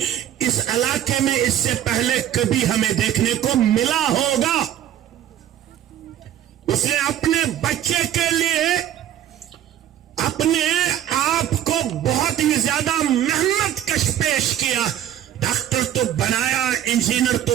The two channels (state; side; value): quieter; left; 11.4 dB